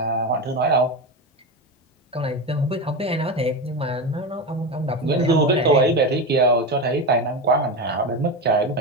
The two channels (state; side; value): normal; both; correlation 0.18